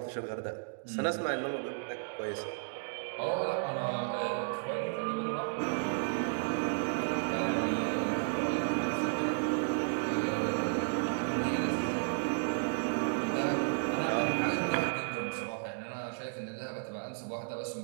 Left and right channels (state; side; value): silent; left; digital silence